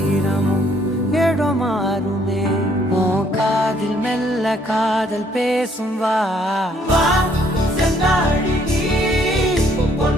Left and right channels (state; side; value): normal; both; correlation 0.66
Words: இடம் மாறுமே உன் காதில் மெல்ல காதல் பேசும் வா செந்தாழி நீ